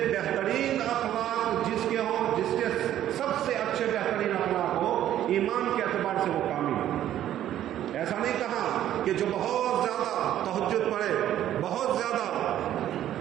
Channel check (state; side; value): quieter; left; 11.9 dB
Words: اخلاق جس کے ہوں، جس کے سب سے اچھے بہترین اخلاق ہو، ایمان کے اعتبار سے وہ کامل ہو۔ ایسا نہیں کہا کہ جو بہت زیادہ تہجد پڑھے، بہت زیادہ